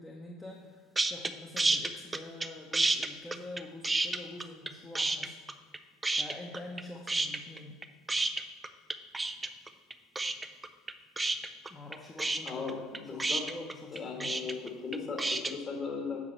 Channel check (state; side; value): normal; both; correlation 0.85